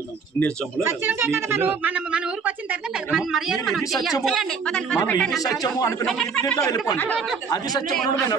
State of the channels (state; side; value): quieter; left; 5.4 dB